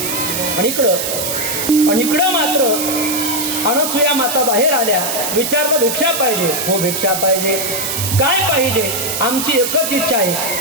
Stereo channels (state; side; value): noise; right; hiss, 2 dB below the sound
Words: आणि इकडं मात्र अनसुया माता बाहेर आल्या. विचारलं भिक्षा पाहिजे? हो भिक्षा पाहिजे. काय पाहिजे? आमची एकच इच्छा आहे,